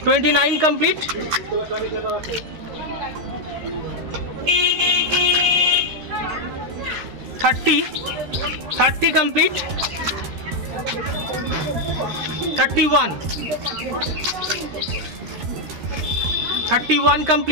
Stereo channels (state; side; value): late; left; 13 ms